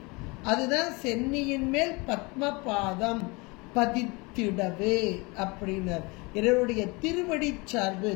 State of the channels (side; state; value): right; quieter; 26.8 dB